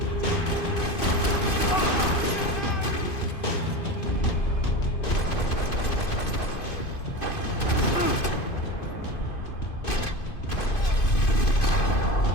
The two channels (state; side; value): late; right; 2.5 ms